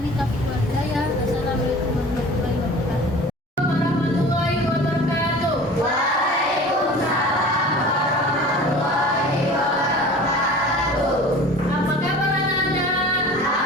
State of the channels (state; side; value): normal; both; correlation 0.41